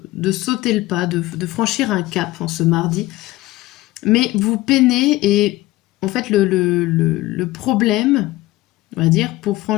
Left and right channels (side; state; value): right; quieter; 18.0 dB